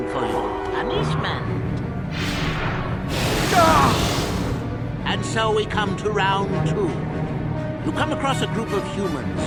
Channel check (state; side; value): identical; both; correlation 1.00